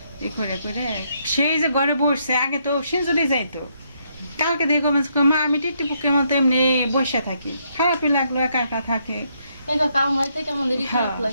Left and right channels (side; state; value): both; inverted; correlation -0.75